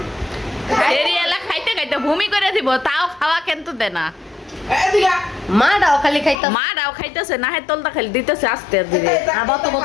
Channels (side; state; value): right; drops out; at 6.4 s